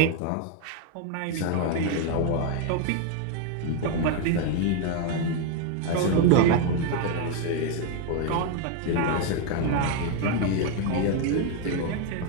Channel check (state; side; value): different; both; correlation 0.01